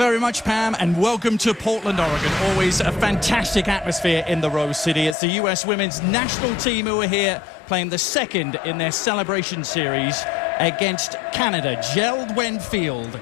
much, Pam, and welcome to Portland, Oregon. Always a fantastic atmosphere in the Rose City. It's the U.S. women's national team who are here playing the second in their celebration series against Canada. Gerald Field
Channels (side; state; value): right; drops out; at 5.2 s